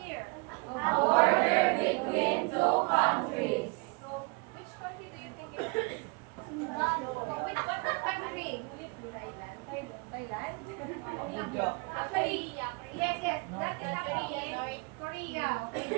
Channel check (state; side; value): quieter; left; 30.1 dB